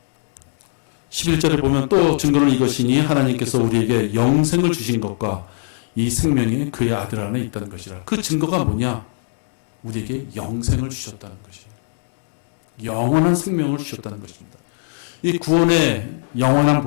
11절에 보면 또 증거는 이것이니 하나님께서 우리에게 영생을 주신 것과 이 생명이 그의 아들 안에 있다는 것이라. 그 증거가 뭐냐? 우리에게 영생을 주셨다는 것이에요. 영원한 생명을 주셨다는 것입니다. 이 구원의 영원한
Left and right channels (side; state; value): right; silent; digital silence